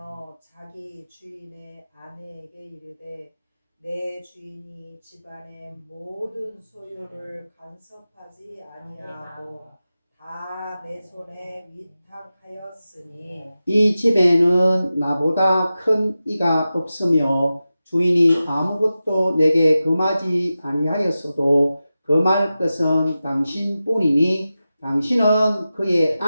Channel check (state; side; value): inverted; both; correlation -0.93